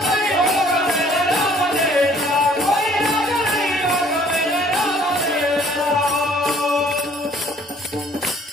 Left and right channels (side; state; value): both; normal; correlation 0.58